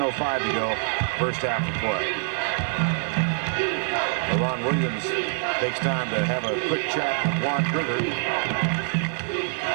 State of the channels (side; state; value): left; silent; 61 dB below the other